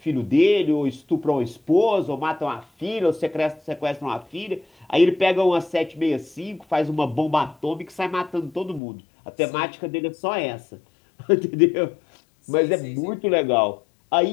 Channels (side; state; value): right; drops out; at 8.8 s